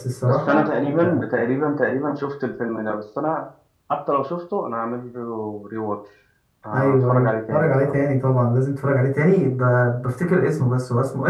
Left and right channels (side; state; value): both; identical; correlation 1.00